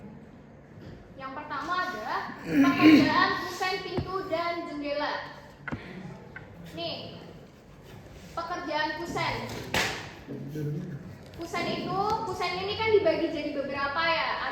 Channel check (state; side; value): identical; both; correlation 1.00